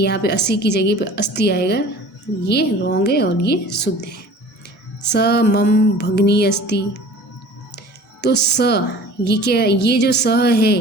पे अस्सी की जगह पे अस्ति आएगा, ये रॉन्ग है और ये शुद्ध है। स मम भगनी अस्ति, तो स ये क्या, ये जो स है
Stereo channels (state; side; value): normal; both; correlation 0.44